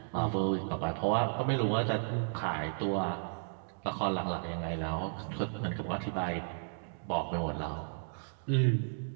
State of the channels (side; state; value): left; silent; digital silence